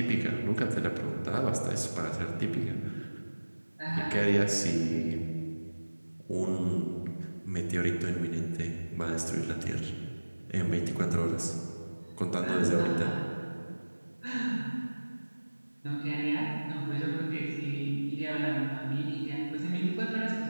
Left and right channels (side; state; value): both; inverted; correlation -1.00